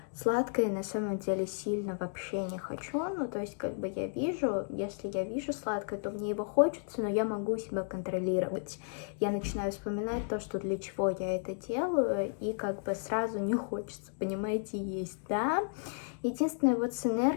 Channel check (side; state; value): right; silent; digital silence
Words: сладкое на самом деле сильно вообще не хочу, ну то есть как бы я вижу, если я вижу сладкое, то мне его хочется, но я могу себя контролировать. Я начинаю вспоминать то, что для чего я это делаю, и как бы сразу не хочется, понимаете, есть, да. Единственное, вот с